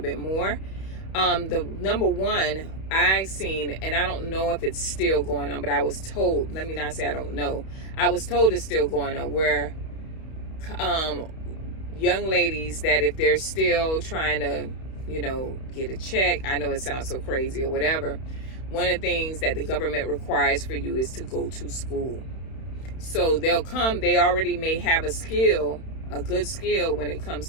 more. The number one I seen, and I don't know if it's still going on, but I was told, let me not say I don't know, I was told it's still going on, where young ladies that if they're still trying to, get a check, I know it sounds so crazy or whatever, one of the things that the government requires for you is to go to school. So they'll come, they already may have a good skill when it comes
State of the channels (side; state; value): right; late; 31 ms